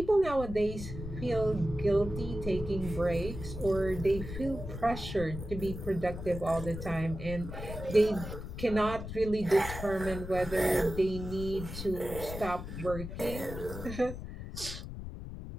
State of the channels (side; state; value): left; noise; rumble, 8 dB below the sound